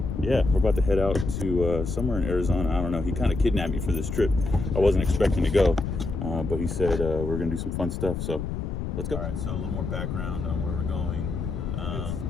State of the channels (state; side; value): noise; left; rumble, 4 dB below the sound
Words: Yeah, we're about to head out to somewhere in Arizona. I don't know. He kind of kidnapped me for this trip. I wasn't expecting to go, but he said we're going to do some fun stuff, so let's go. All right, so a little more background on where we're going. It's